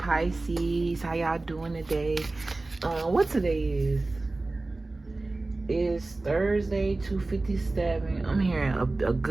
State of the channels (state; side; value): quieter; left; 3.1 dB